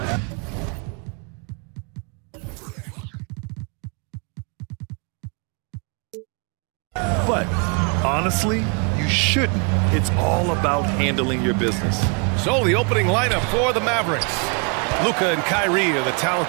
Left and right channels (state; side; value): quieter; left; 35.7 dB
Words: But honestly, you shouldn't. It's all about handling your business. So the opening lineup for the Mavericks. Luka and Kyrie are the